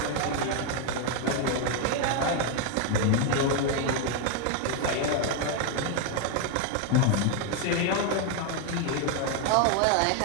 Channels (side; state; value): both; different; correlation 0.01